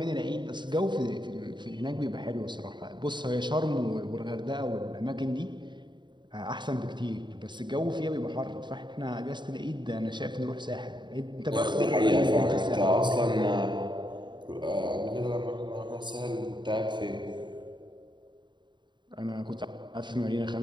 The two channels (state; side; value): late; left; 0.22 ms